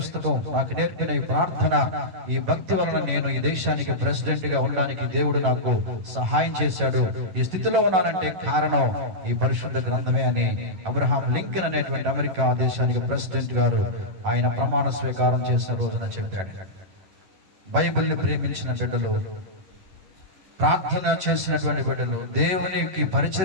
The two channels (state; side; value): late; left; 11 ms